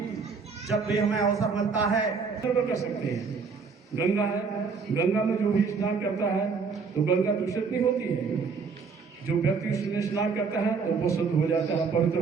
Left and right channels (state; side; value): quieter; left; 5.1 dB